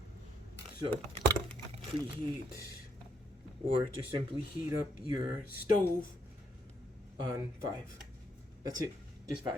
So preheat, or just simply heat up your stove on 5. That's it. Just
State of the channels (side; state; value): both; normal; correlation 0.74